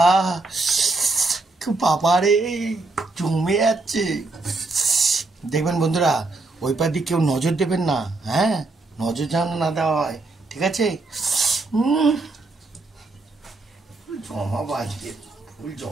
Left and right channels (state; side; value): quieter; left; 3.4 dB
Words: বাবা রে, জমে যাচ্ছে। দেখবেন বন্ধুরা, ওই পার দিকে কেউ নজর দেবেন না, হ্যাঁ, নজর যেন না দেওয়া হয়, ঠিক আছে? জমাবো আজকে, ফুল